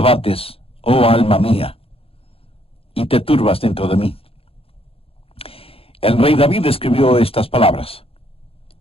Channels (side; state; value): right; late; 0.27 ms